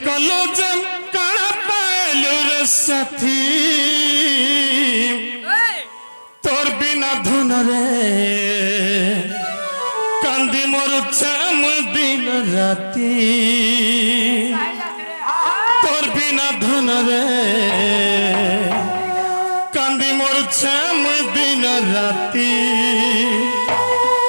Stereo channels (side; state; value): both; inverted; correlation -1.00